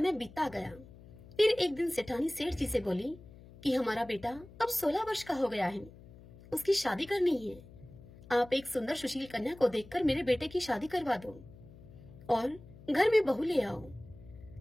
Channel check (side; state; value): left; noise; hum, 20 dB below the sound